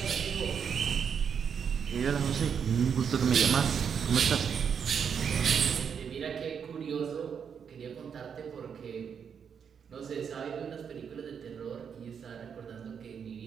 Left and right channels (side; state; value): left; quieter; 7.1 dB